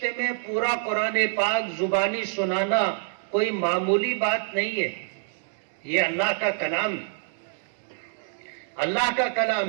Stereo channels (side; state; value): left; silent; digital silence